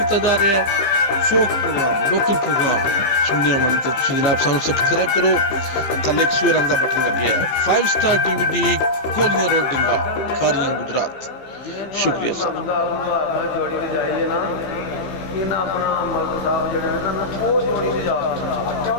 ਜਾ ਰਿਹਾ ਹੈ ਫੋਕ ਪ੍ਰੋਗਰਾਮ ਲੋਕਲ ਪ੍ਰੋਗਰਾਮ ਸੁਣਨੇ ਵਾਲੇ ਤਾਂ ਤੁਸੀਂ ਜਨਾਬ ਸਾਨੂੰ ਸਬਸਕ੍ਰਾਈਬ ਕਰੋ ਥੱਲੇ ਇੱਕ ਸੂਰ ਰੰਗ ਦਾ ਬਟਨ ਲੱਗਿਆ ਹੈ 5 ਸਟਾਰ DVD ਕੋਲੀਆਂ ਰੋਡ ਡਿੰਗਾ ਖਾਰੀਆਂ ਗੁਜਰਾਤ ਸ਼ੁਕਰੀਆ ਸਰ ਜੋੜੀ ਤੇ ਜਾਈਏ ਨਾ ਇਹਨਾਂ ਆਪਣਾ ਮਲਕ ਸਾਹਿਬ ਜਿਹੜੇ ਨੇ ਨਾ ਉਹ ਜੋੜੀ ਤੇ ਜਾ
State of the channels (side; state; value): right; late; 15 ms